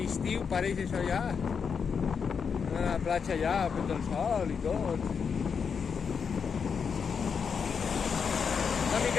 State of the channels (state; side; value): quieter; right; 6.3 dB